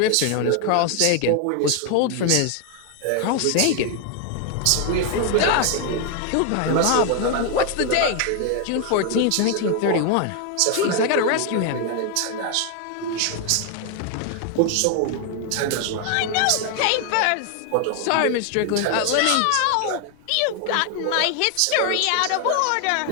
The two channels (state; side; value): different; both; correlation 0.01